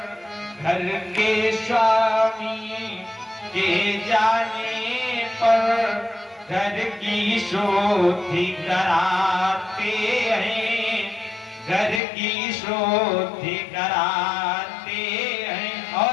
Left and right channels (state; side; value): drops out; right; at 12.0 s